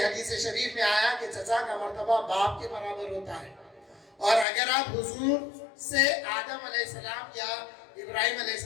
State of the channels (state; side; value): drops out; right; at 4.5 s